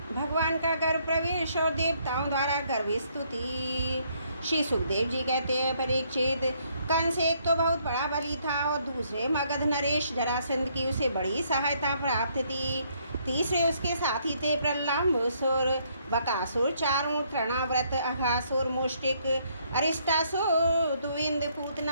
भगवान का गर्भ प्रवेश और देवताओं द्वारा गर्भ स्तुति। श्री सुखदेव जी कहते हैं, परीक्षित, कंस एक तो बहुत बड़ा बली था और दूसरे मगध नरेश जरासंध की उसे बड़ी सहायता प्राप्त थी। तीसरे उसके साथी थे प्रल्लाम्बुसुर, बकासुर, चारों, तृणाव्रत, अघासुर, मुष्टिक, अरिष्टासुर, दुविंद,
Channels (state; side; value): inverted; both; correlation -0.69